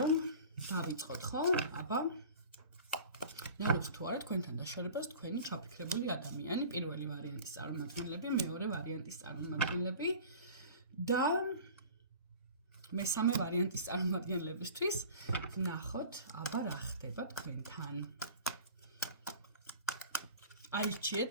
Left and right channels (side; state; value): both; inverted; correlation -0.41